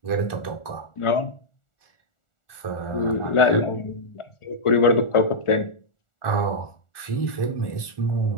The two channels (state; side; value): late; right; 1.4 ms